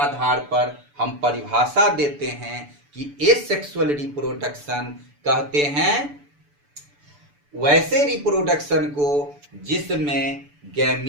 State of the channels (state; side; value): late; left; 6.9 ms